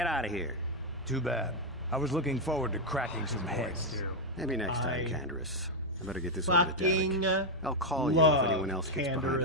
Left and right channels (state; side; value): normal; both; correlation 0.01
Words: out of here. Too bad. I was looking forward to cracking some heads. Maybe next time, Canderous. I better get this over to Fucking Derek. I'll call you if anyone else gets behind on